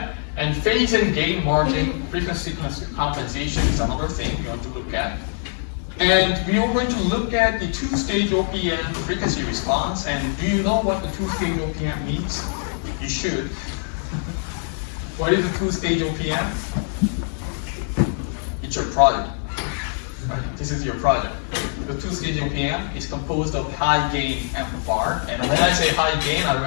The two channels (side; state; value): right; silent; 60 dB below the other